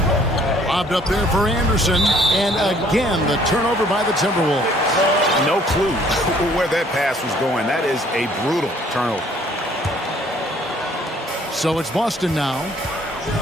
Lobbed up there for Anderson. And again, the turnover by the Timberwolves. No clue where that pass was going. That is a brutal turnover. So it's Boston now.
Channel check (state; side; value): normal; both; correlation 0.59